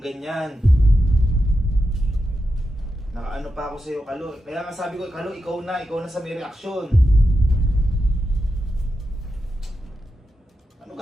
Nakaano pa ako sa'yo, Kalo. Kaya nga sabi ko, Kalo, ikaw na sa may reaksyon. Ano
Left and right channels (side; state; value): both; normal; correlation 0.88